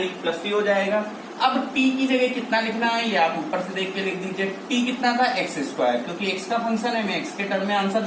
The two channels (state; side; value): identical; both; correlation 1.00